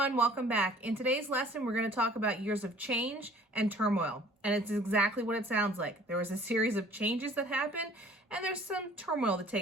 welcome back. In today's lesson, we're going to talk about years of change and turmoil. And it's exactly what it sounds like. There was a series of changes that happened, and there's some turmoil that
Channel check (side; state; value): both; normal; correlation 0.53